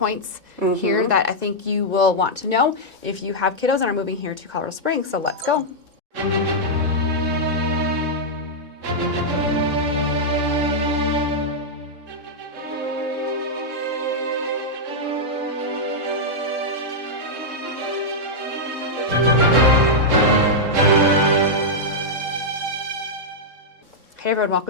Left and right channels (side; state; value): left; late; 3.7 ms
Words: here that I think you will want to know if you have kiddos and are moving here to Colorado Springs. So let's go. Hey everyone,